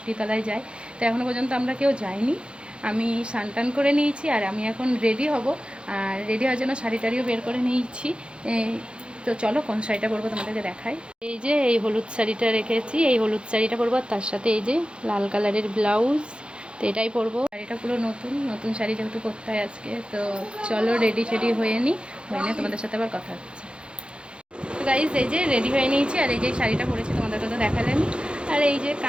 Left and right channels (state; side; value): late; left; 0.055 ms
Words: যায়। তো এখনও পর্যন্ত আমরা কেউ যাইনি। আমি স্নান করে নিয়েছি, আর আমি এখন রেডি হব। আর রেডি হওয়ার জন্য শাড়ি টাড়িও বের করে নিয়েছি। তো চলো কোন শাড়িটা পরবো তোমাদেরকে দেখাই। এই যে এই হলুদ শাড়িটা রেখেছি, এই হলুদ শাড়িটা পরবো, আর তার সাথে এই যে লাল কালারের ব্লাউজ। তো এটাই পরবো। শাড়িটা পুরো নতুন নতুন শাড়ি, যেহেতু করতে হয় আজকে। তো চলো রেডি শেডি হয়ে নিই, হয়ে নিয়ে তোমাদের সাথে আবার কথা হচ্ছে। তো গাইজ এই যে রেডি হয়ে নিয়েছি, আর এই যে শাড়িটা পরেছি তোমাদেরকে তো দেখালেন। আর এই যে